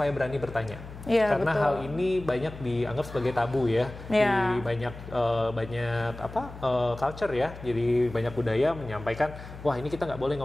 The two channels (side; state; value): left; noise; hum, 14 dB below the sound